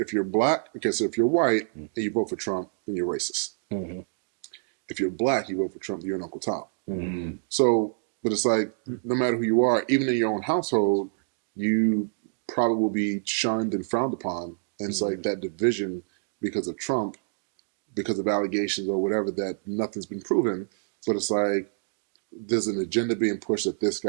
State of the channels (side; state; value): left; silent; digital silence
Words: you're black, so if you're white and you vote for Trump, then you're racist. Mm-hmm. If you're black, you vote for Trump, you're an Uncle Tom. Mm-hmm. So, but it's like, no matter who you are, even in your own household, you probably will be shunned and frowned upon. And it's like that division because of Trump, because of allegations or whatever, that nothing's been proven. But it's like, there's an agenda being pushed that this